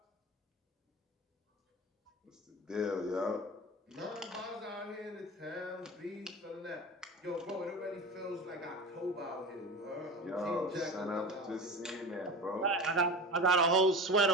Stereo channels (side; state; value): both; normal; correlation 0.31